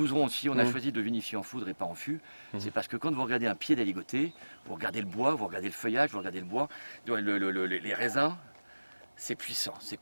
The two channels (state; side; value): inverted; both; correlation -1.00